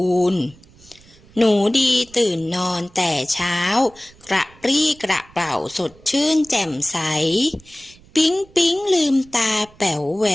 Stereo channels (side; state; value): right; noise; rumble, 26 dB below the sound